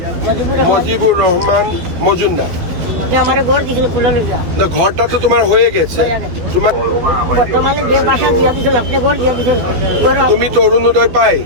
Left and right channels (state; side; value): late; left; 12 ms